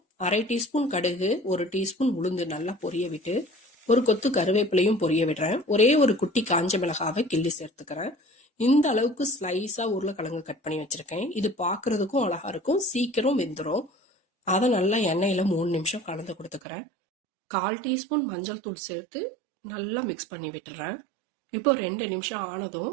1/2 டீஸ்பூன் கடுகு, 1 டீஸ்பூன் உளுந்து நல்லா பொரிய விட்டு ஒரு கொத்து கருவேப்பிலையும் பொரிய விடுறேன். ஒரே ஒரு குட்டி காஞ்ச மிளகாவை கிள்ளி சேர்த்துக்கிறேன். இந்த அளவுக்கு ஸ்லைஸா உருளைக்கிழங்கு கட் பண்ணி வச்சிருக்கேன். இது பார்க்கறதுக்கும் அழகா இருக்கும், சீக்கிரம் வெந்துடும். அதை நல்லா எண்ணெயில 3 நிமிஷம் கலந்து கொடுத்துக்கிறேன். 1/4 டீஸ்பூன் மஞ்சள் தூள் சேர்த்து நல்லா மிக்ஸ் பண்ணி விட்டுறேன். இப்போ 2 நிமிஷம் ஆனதும்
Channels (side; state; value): left; drops out; at 16.6 s